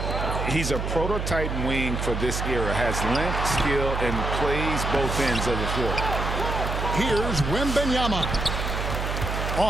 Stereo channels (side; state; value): right; noise; hum, 2 dB below the sound